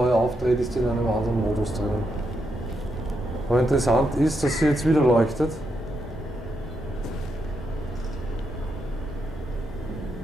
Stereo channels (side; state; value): both; normal; correlation 0.82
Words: aufdreht, ist die in einem anderen Modus drinnen. Aber interessant ist, dass sie jetzt wieder leuchtet.